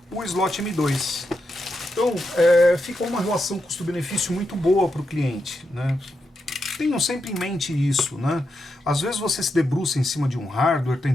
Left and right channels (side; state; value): both; normal; correlation 0.85